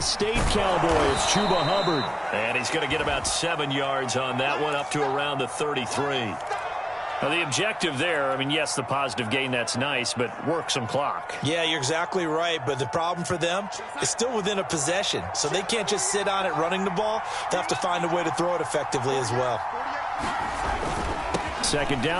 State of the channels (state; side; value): identical; both; correlation 1.00